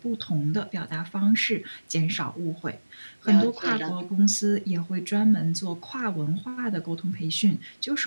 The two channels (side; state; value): both; inverted; correlation -1.00